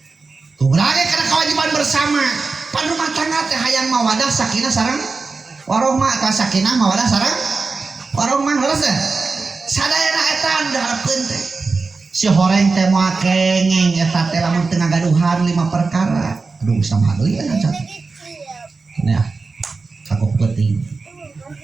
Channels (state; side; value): quieter; left; 4.2 dB